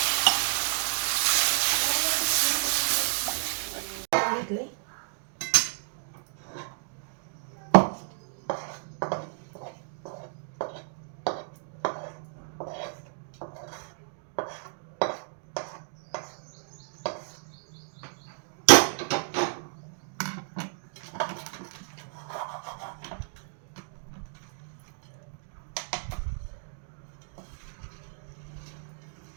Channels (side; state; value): left; silent; 57 dB below the other